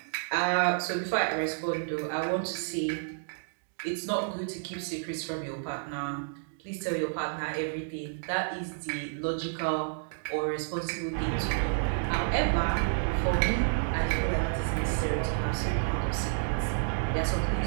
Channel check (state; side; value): silent; left; digital silence